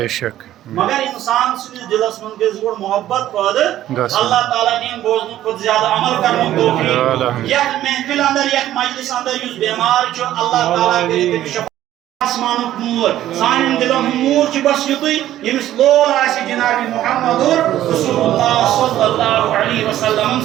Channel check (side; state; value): left; quieter; 13.0 dB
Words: شک. مگر انسان سندس دلس من گز گوڑ محبت پد اللہ تعالیٰ دین بوزن کھت زیادہ عمل کرنے توفیق. یک محفل اندر یک مجلس اندر یس بیمار چھو اللہ تعالیٰ کرے تمس آسمانک نور سان دلن نور چھ بس یتھے یمس لول آسی جناب محمد رسول اللہ صلی اللہ علیہ وسلم